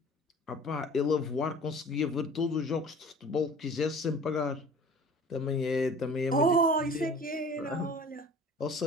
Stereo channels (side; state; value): both; normal; correlation 0.45